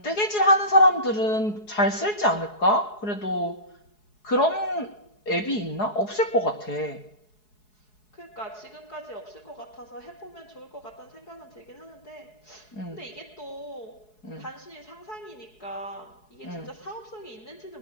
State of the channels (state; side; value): late; right; 4.7 ms